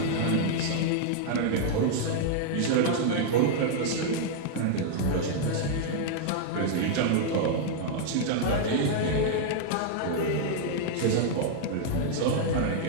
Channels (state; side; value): different; both; correlation -0.01